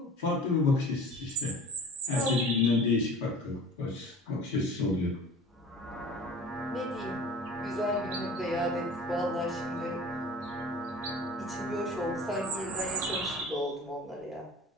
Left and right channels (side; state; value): both; normal; correlation 0.42